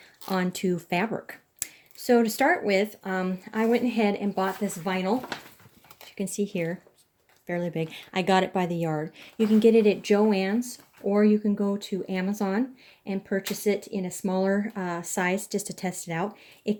onto fabric. So to start with, I went ahead and bought this vinyl. As you can see here, fairly big. I got it by the yard. You can get it at Joann's, or you can go to Amazon and purchase it in a smaller size just to test it out. It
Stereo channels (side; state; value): both; identical; correlation 1.00